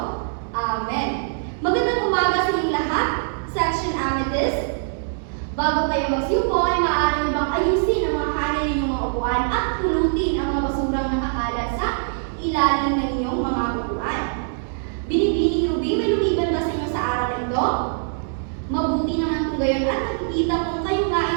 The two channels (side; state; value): left; silent; 64 dB below the other